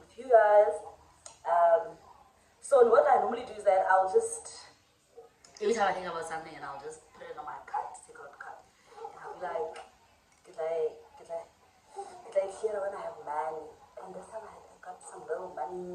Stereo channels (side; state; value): both; identical; correlation 1.00